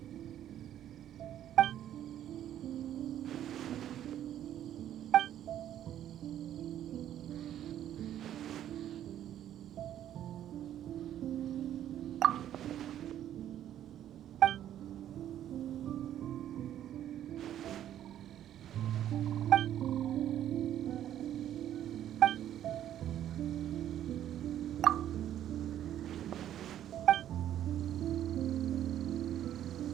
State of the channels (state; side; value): quieter; left; 11.2 dB